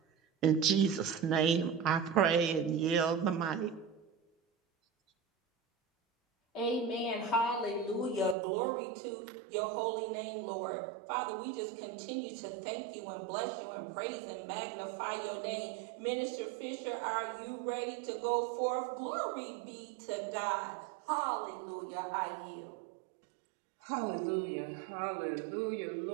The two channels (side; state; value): left; drops out; at 8.3 s